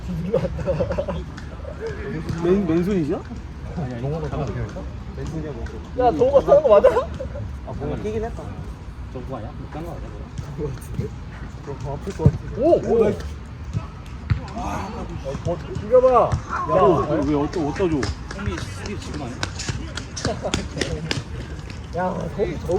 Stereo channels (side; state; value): both; identical; correlation 1.00